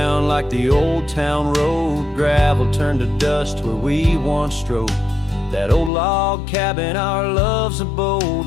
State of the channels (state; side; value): drops out; right; at 5.9 s